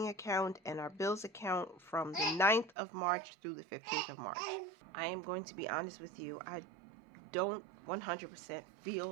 account and our bills account from the 9th of March through the 15th of March. I am going to be honest with you, I don't 100%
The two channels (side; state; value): left; drops out; at 2.8 s